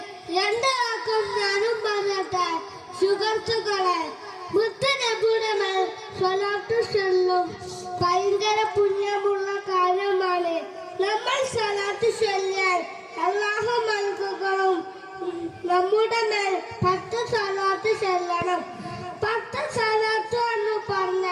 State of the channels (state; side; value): identical; both; correlation 1.00